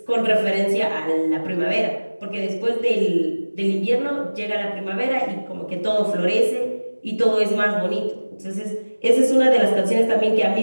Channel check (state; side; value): inverted; both; correlation -1.00